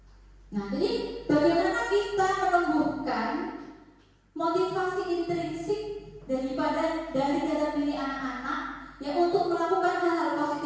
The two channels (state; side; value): identical; both; correlation 1.00